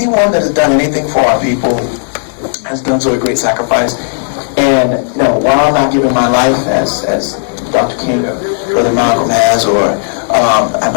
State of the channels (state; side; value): silent; right; digital silence